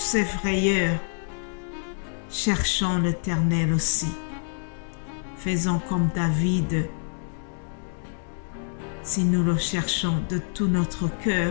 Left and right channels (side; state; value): right; silent; 61 dB below the other